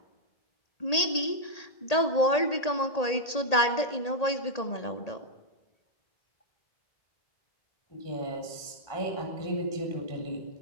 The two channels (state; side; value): late; right; 1.8 ms